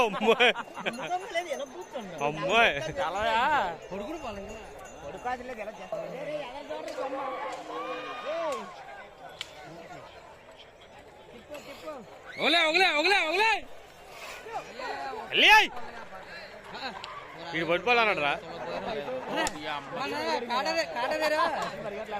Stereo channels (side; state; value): both; identical; correlation 1.00